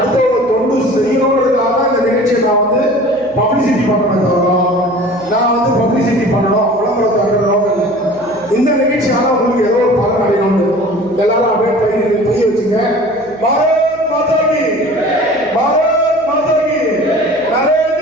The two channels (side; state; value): right; noise; hum, 24 dB below the sound